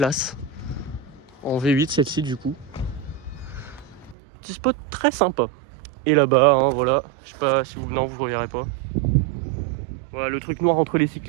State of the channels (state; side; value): drops out; left; at 4.2 s